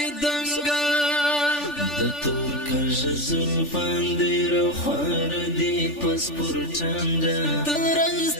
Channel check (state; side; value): late; right; 3.4 ms